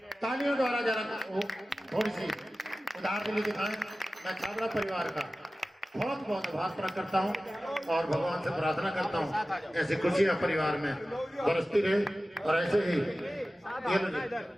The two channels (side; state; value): both; normal; correlation 0.95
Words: तालियों द्वारा जरा थोड़ी सी उदाहरण के लिए दिखाएं। मैं छाबड़ा परिवार का बहुत बहुत आभार प्रकट करता हूँ और भगवान से प्रार्थना करता हूँ ऐसी खुशियाँ परिवार में बरसती रहे, और ऐसे ही ये